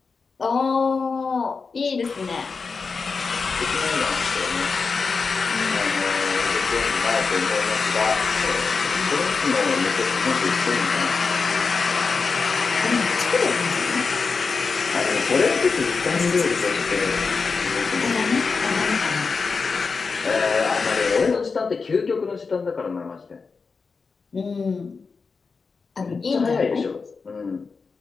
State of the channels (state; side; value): quieter; right; 4.8 dB